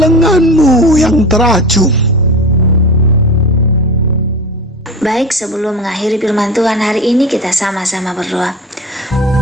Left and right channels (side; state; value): both; normal; correlation 0.30